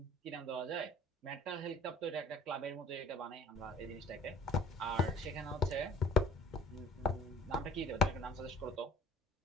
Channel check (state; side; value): normal; both; correlation 0.50